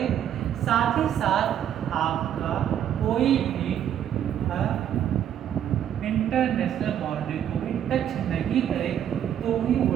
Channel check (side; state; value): left; quieter; 10.0 dB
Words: साथ ही साथ आपका कोई भी इंटरनेशनल बाउंड्री को भी टच नहीं करे, तो ही वो